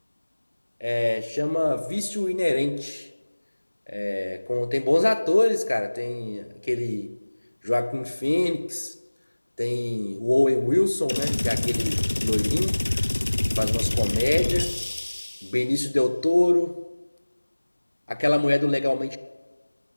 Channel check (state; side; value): inverted; both; correlation -1.00